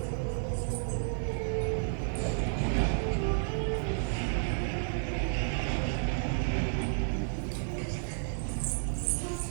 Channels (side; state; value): left; silent; digital silence